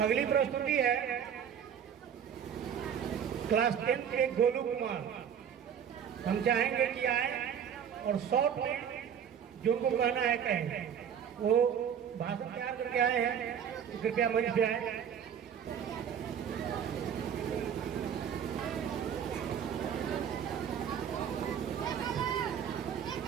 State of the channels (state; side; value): quieter; left; 8.4 dB